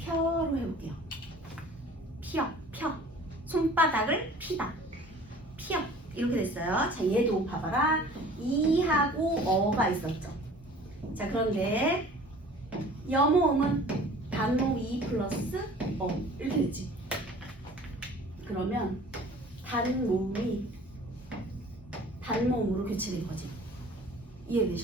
해볼게요. 펴. 손바닥을 피다. 피어. 이렇게 됐어요. 자, 얘도 봐봐라. 이하고 어가 있었죠. 자, 그런데 여모음은 단모음 2 플러스 어 이렇게 됐지. 그러면 단모음이 단모음으로 교체된 거지.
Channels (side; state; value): both; normal; correlation 0.47